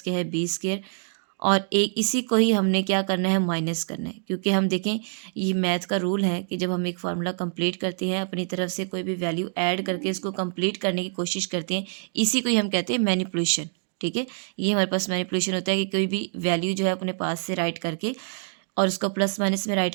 क्या है बी स्केयर, और एक इसी को ही हमने क्या करना है, माइनस करना है। क्योंकि हम देखें, ये मैथ का रूल है कि जब हम एक फार्मूला कंप्लीट करते हैं, अपनी तरफ से कोई भी वैल्यू ऐड करके इसको कंप्लीट करने की कोशिश करते हैं, इसी को ही हम कहते हैं मैनिपुलेशन। ठीक है, ये हमारे पास मैनिपुलेशन होता है कि कोई भी वैल्यू जो है अपने पास से राइट करके और उसको प्लस माइनस में राइट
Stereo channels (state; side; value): silent; left; digital silence